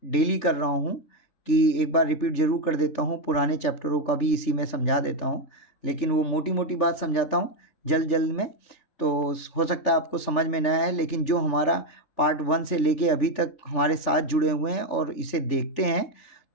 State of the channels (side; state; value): right; late; 3.4 ms